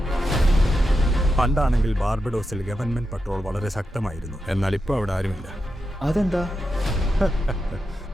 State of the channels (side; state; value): both; normal; correlation 0.88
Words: പണ്ടാണെങ്കിൽ ബാർബഡോസിൽ ഗവൺമെന്റ് പട്രോൾ വളരെ ശക്തമായിരുന്നു. എന്നാൽ ഇപ്പോൾ അവിടെ ആരുമില്ല. അതെന്താ?